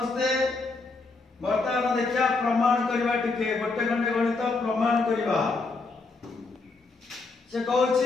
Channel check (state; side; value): quieter; right; 3.8 dB